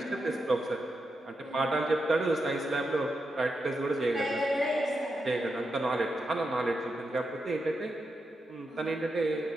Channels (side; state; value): both; normal; correlation 0.86